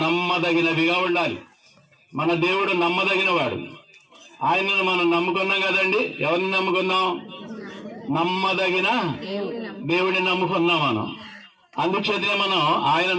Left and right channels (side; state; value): both; identical; correlation 1.00